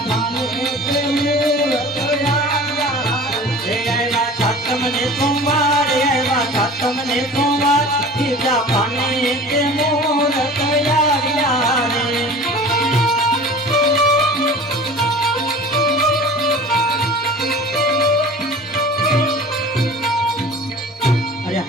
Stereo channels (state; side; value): normal; both; correlation 0.41